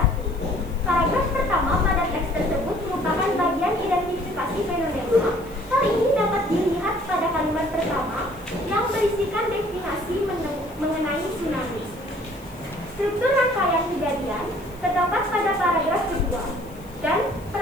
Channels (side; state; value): left; noise; hiss, 24 dB below the sound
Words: Paragraf pertama pada teks tersebut merupakan bagian identifikasi fenomena. Hal ini dapat dilihat pada kalimat pertama yang berisikan definisi mengenai tsunami. Struktur rangkaian kejadian terdapat pada paragraf kedua dan